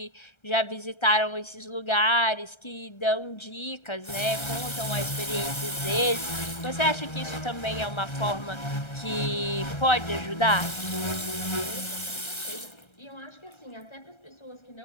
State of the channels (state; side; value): late; right; 1.3 ms